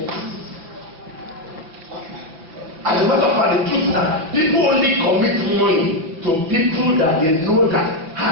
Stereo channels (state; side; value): late; left; 6.0 ms